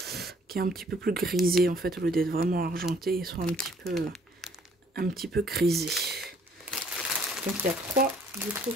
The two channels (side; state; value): both; normal; correlation 0.61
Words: plus grisé en fait, au lieu d'être vraiment argenté, ils sont un petit peu grisés. Donc il y a 3 du coup